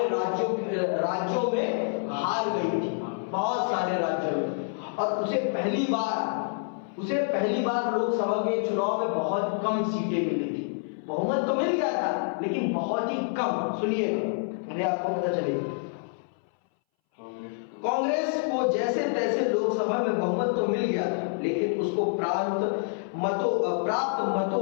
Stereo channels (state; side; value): silent; right; 60 dB below the other